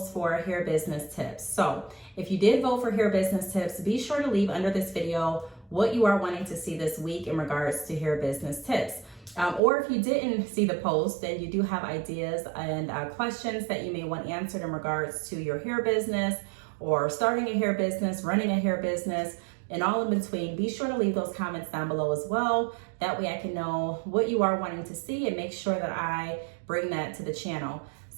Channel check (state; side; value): drops out; left; at 9.6 s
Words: for hair business tips. So if you did vote for hair business tips, be sure to leave under this video what you are wanting to see this week in regards to hair business tips. Or if you didn't see the post, then you do have ideas and questions that you may want answered in regards to your hair business or starting a hair business, running a hair business, and all in between. Be sure to leave those comments down below as well. That way I can know what you are wanting to see and make sure that I bring that to the channel.